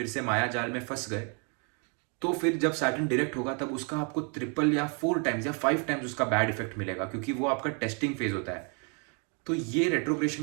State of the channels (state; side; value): quieter; left; 37.0 dB